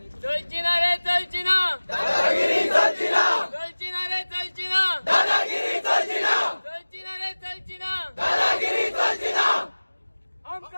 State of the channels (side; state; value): both; inverted; correlation -1.00